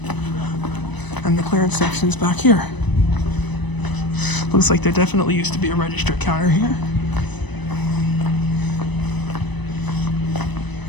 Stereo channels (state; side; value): late; right; 1.0 ms